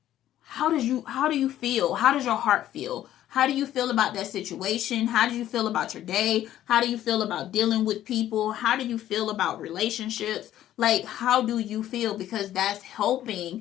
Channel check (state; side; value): quieter; right; 12.5 dB